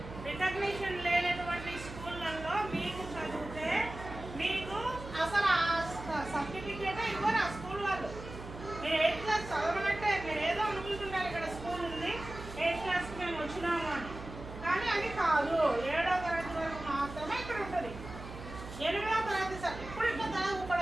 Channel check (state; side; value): noise; right; hum, 12 dB below the sound